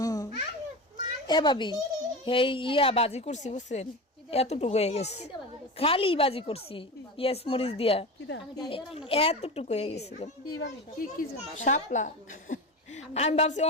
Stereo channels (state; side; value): normal; both; correlation 0.26